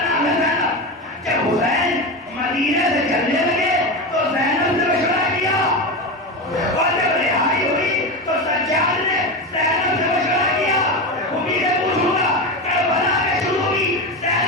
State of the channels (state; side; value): normal; both; correlation 0.19